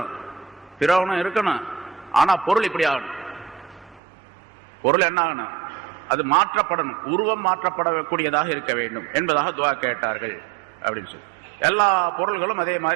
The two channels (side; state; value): left; drops out; at 4.0 s